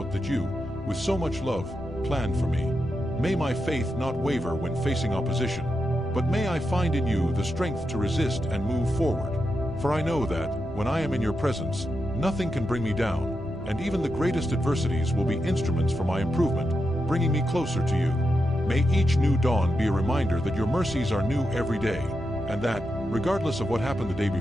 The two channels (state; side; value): noise; left; rumble, 16 dB below the sound